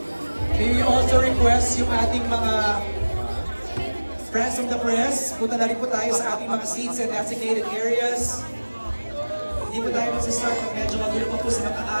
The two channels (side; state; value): both; inverted; correlation -1.00